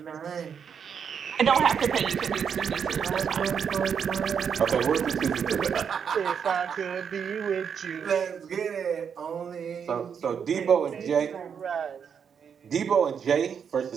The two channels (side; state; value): left; quieter; 7.2 dB